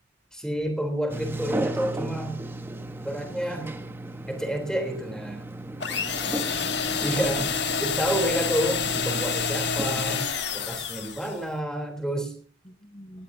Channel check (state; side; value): normal; both; correlation 0.49